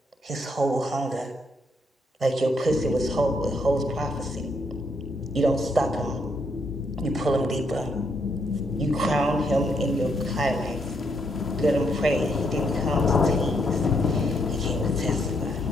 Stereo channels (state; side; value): normal; both; correlation 0.75